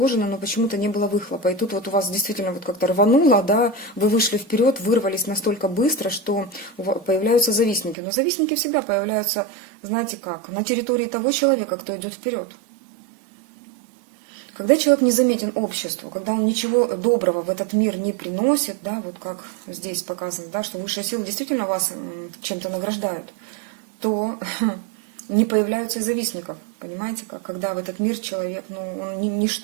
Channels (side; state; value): left; drops out; at 8.0 s